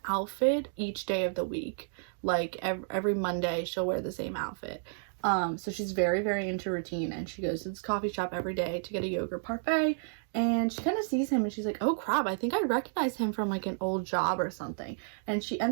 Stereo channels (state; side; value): silent; left; digital silence